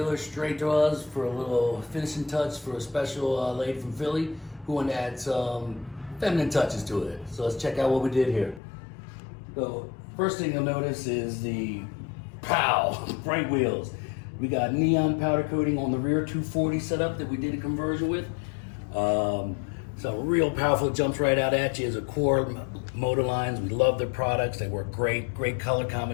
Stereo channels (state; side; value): drops out; right; at 8.6 s